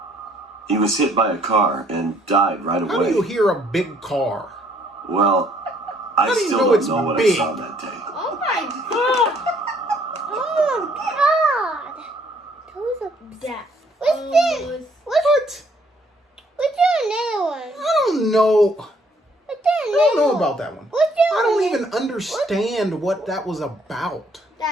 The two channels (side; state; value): both; normal; correlation 0.65